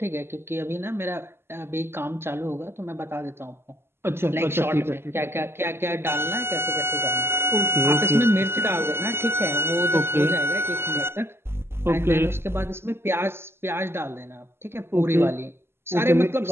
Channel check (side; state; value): left; late; 0.12 ms